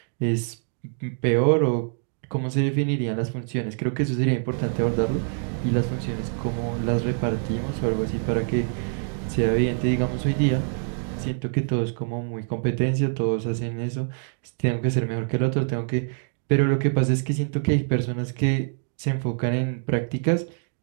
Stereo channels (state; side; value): silent; left; 59 dB below the other